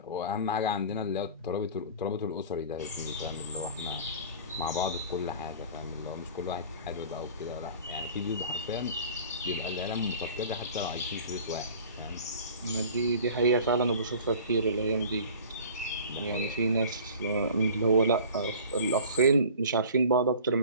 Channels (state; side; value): inverted; both; correlation -0.43